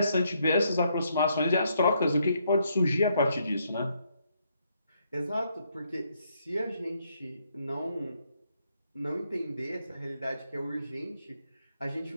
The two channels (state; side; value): inverted; both; correlation -0.74